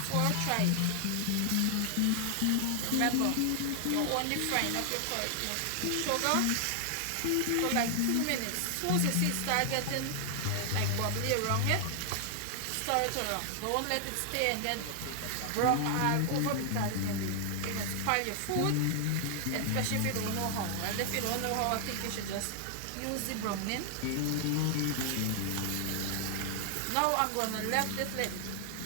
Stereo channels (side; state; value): both; different; correlation 0.00